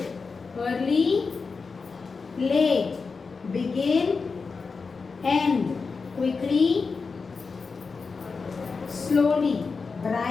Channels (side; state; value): right; quieter; 4.7 dB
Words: early, late, begin, end, quickly, slowly,